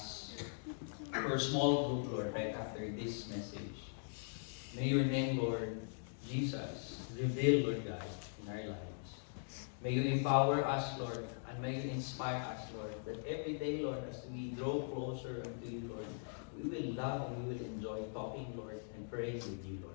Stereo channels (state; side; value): silent; right; digital silence